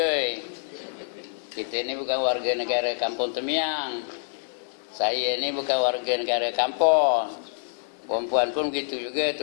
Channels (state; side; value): silent; right; digital silence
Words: Kita ni bukan warga negara Kampung Temiang. Saya ni bukan warga negara kampung. Perempuan pun begitu juga,